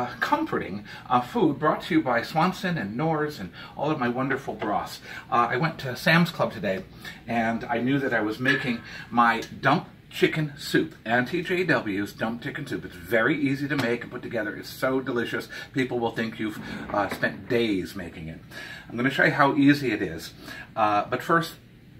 comforting food brought to you by Swanson and Knorr's and all of my wonderful broths. I went to Sam's Club today and I knew that I was making my dump chicken soup. Auntie JW's dump chicken soup. It's very easy to make and put together. It's so delicious. People will think you've spent days making it. I'm going to show you how easy it is. But first,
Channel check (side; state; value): both; identical; correlation 1.00